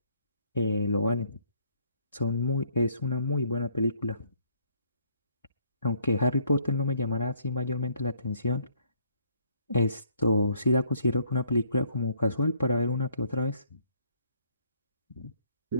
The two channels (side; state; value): both; inverted; correlation -0.65